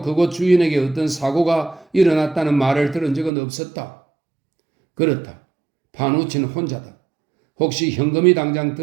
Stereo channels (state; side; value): drops out; left; at 3.3 s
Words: 주인에게 어떤 사고가 일어났다는 말을 들은 적은 없었다. 그렇다. 파누치는 혼자다. 혹시 현금이 당장